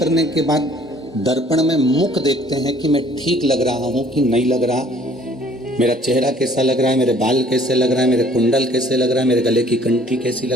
के बाद दर्पण में मुख देखते हैं कि मैं ठीक लग रहा हूं कि नहीं लग रहा, मेरा चेहरा कैसा लग रहा है, मेरे बाल कैसे लग रहा है, मेरे कुंडल कैसे लग रहा है, मेरे गले की कंठी कैसी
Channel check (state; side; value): normal; both; correlation 0.57